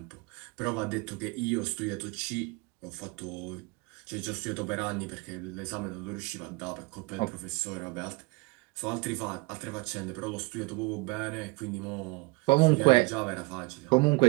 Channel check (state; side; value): quieter; left; 25.3 dB